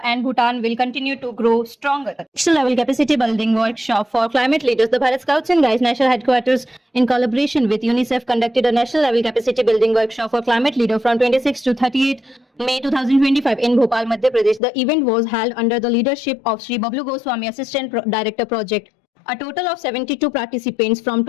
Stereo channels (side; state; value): right; drops out; at 14.6 s